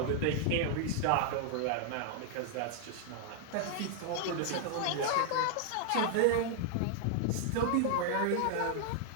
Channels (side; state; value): both; different; correlation 0.00